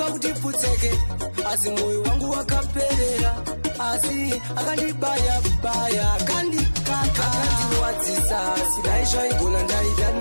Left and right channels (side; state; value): both; inverted; correlation -1.00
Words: kutiputseke Asi moyo wangu wakaperera Asi akandibaya baya Akandikaka Akandiwadzisa Sidaisha igona